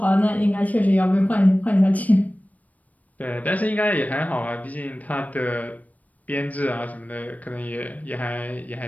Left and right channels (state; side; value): late; right; 0.073 ms